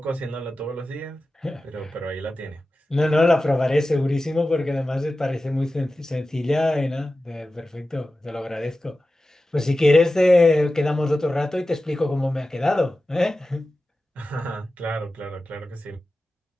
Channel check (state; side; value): normal; both; correlation 0.94